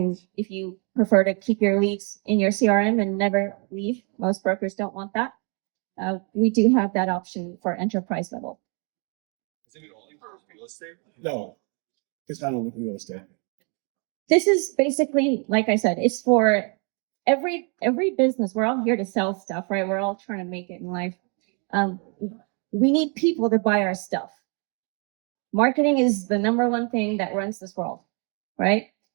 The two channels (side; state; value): left; quieter; 36.7 dB